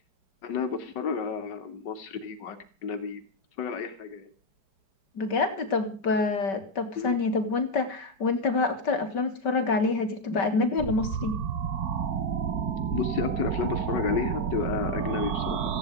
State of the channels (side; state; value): right; late; 5.2 ms